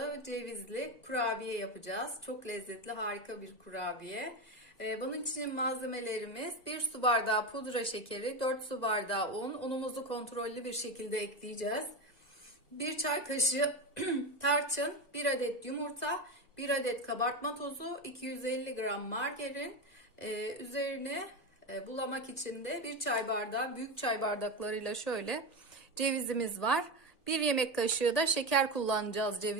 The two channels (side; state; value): right; late; 2.0 ms